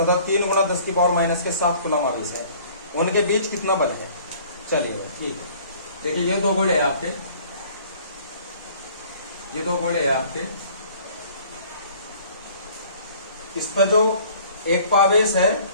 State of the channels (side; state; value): both; inverted; correlation -0.53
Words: 3 गुणा 10 की पावर माइनस के 7 कूलाम आवेश है, उनके बीच कितना बल है। चलिए ठीक है, देखिए ये दो गोले हैं आपके, ये दो गोले हैं आपके। इस पर जो एक आवेश है